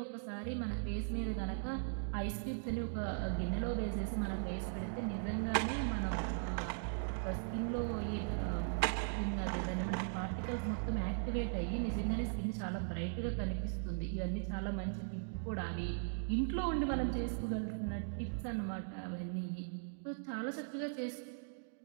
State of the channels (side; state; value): left; silent; digital silence